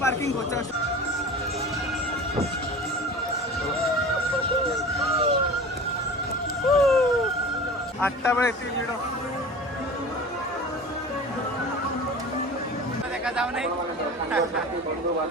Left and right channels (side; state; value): both; normal; correlation 0.37